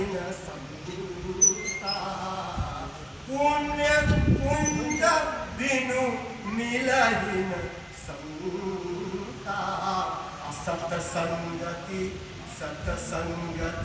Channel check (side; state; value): both; identical; correlation 1.00